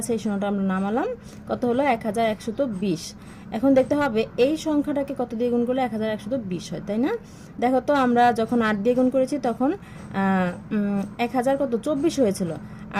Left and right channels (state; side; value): identical; both; correlation 1.00